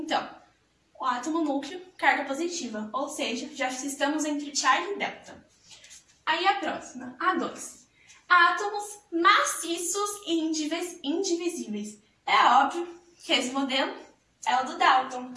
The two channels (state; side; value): identical; both; correlation 1.00